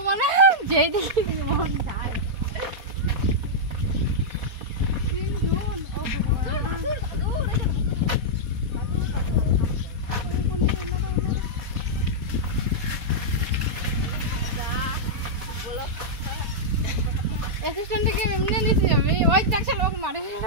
মানে যেই দিকে মন যায় অ্যাসিস্ট্যান্টকে এমনি নিছি আমি ওই দেখছ লোক মারে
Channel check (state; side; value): late; left; 4.2 ms